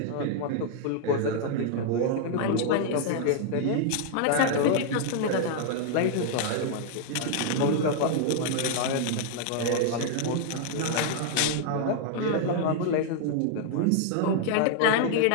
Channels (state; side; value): different; both; correlation -0.01